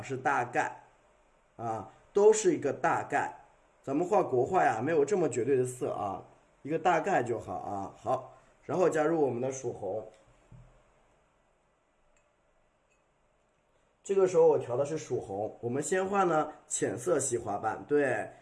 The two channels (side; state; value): both; identical; correlation 1.00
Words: 都是一个大概。咱们画国画呀，没有这么绝对的色啊，一个大概就好啊。好，然后加入我们的曙红。这个时候我调的是曙红，我们先画呢浅色系花瓣，对，